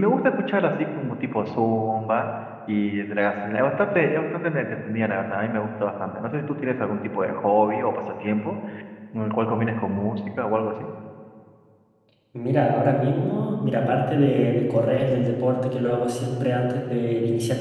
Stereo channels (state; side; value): identical; both; correlation 1.00